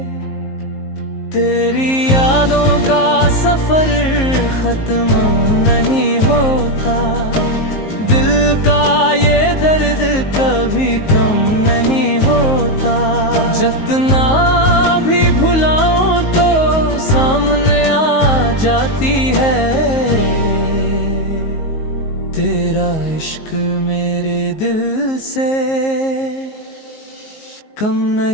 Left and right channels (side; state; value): right; late; 19 ms